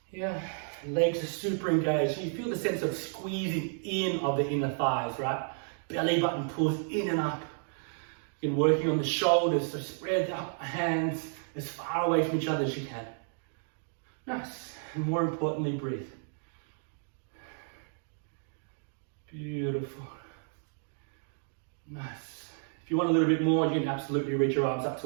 Yeah, legs are super engaged. You feel the sense of squeezing in of the inner thighs, right? Belly button pulls in and up. You're working on the shoulders, so spread the hands as far away from each other as you can. Nice. And more importantly, breathe. Beautiful. Nice. If you want a little bit more, you can absolutely reach your arms up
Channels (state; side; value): silent; left; 56 dB below the other